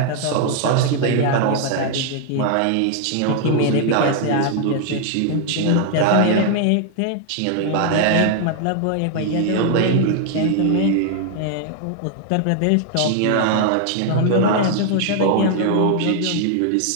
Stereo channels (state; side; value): different; both; correlation 0.00